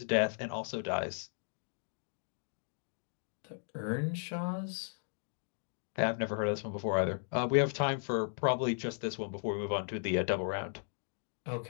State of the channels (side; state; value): right; silent; digital silence